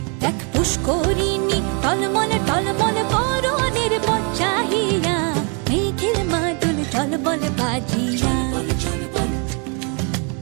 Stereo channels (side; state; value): left; quieter; 36.2 dB